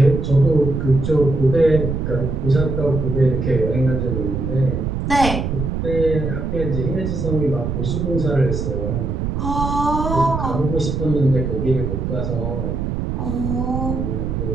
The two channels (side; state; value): right; noise; rumble, 2 dB below the sound